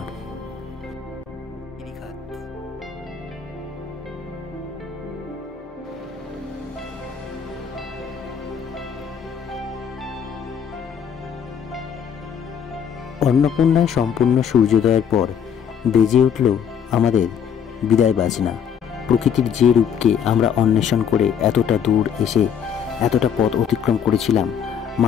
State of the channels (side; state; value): right; quieter; 7.8 dB